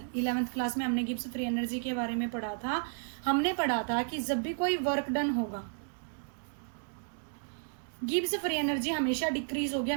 11th class में हमने गिब्स फ्री एनर्जी के बारे में पढ़ा था। हमने पढ़ा था कि जब भी कोई वर्क डन होगा, गिब्स फ्री एनर्जी हमेशा डिक्रीज होगी,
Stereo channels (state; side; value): silent; left; digital silence